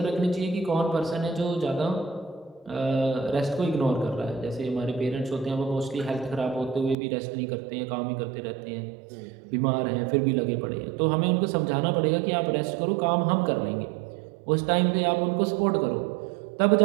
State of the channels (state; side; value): drops out; left; at 7.0 s